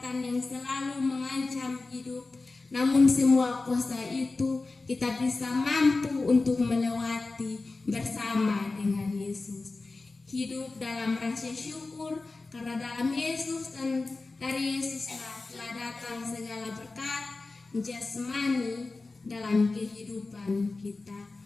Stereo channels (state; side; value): quieter; right; 3.6 dB